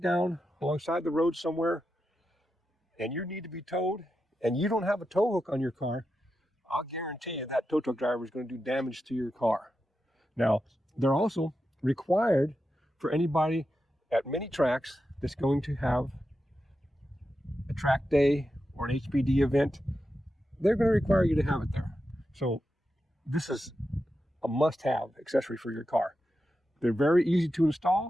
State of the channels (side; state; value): both; normal; correlation 0.89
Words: alongside the road somewhere and you need to be towed and you don't have a tow hook on your car, I'll guarantee you that tow truck driver is going to do damage to your car. Now, they're also required for anybody at many tracks that's going to have a track day or an HPD event. They're going to require you to have it there. So this is a must-have accessory for your car. They're very easy to